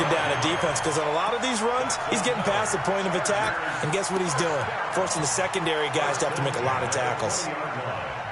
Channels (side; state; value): both; identical; correlation 1.00